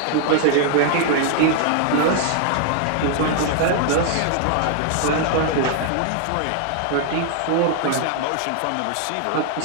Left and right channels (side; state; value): both; different; correlation 0.00